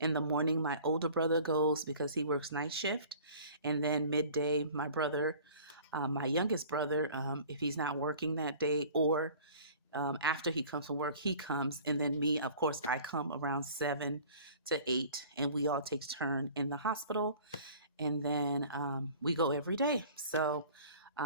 the morning, my older brother goes because he works night shift. And then midday, my brother, my youngest brother, if he's not working that day or after he comes from work, he comes. And then me, of course, I come around 7 to 8 and we all take turn in the hospital. And then we go every day. So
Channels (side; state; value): both; inverted; correlation -0.46